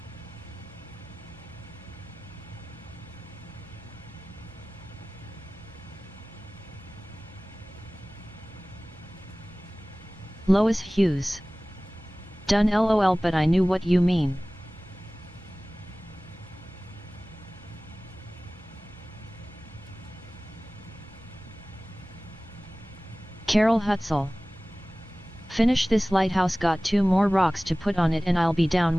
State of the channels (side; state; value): both; normal; correlation 0.98